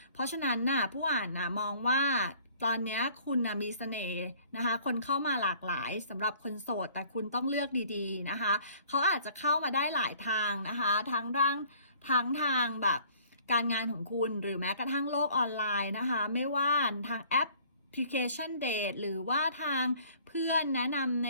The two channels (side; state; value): both; inverted; correlation -0.54